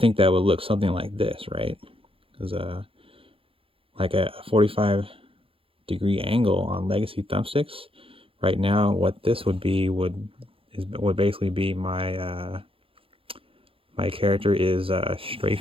that would look something like this, right? Because like a 45-degree angle on Legacy Thumbsticks. Right now, what this would be would basically be my my character is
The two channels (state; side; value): late; left; 0.27 ms